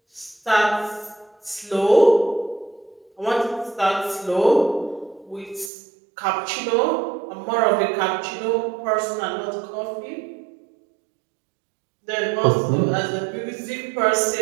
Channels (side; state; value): left; drops out; at 5.7 s